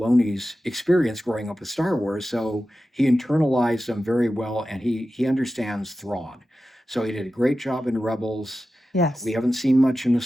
experience growing up with Star Wars, so he internalized them very well, and he understands Thrawn. So he did a great job in Rebels. Yes. We haven't seen much in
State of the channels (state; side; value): normal; both; correlation 0.93